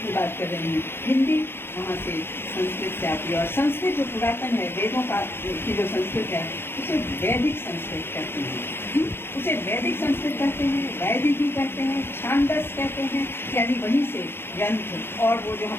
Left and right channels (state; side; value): late; right; 0.11 ms